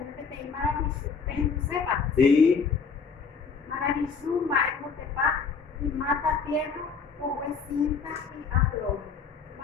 Sí. Maravilluma es Motepa y mata tierra, o cinta y aflor.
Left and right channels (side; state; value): right; quieter; 5.5 dB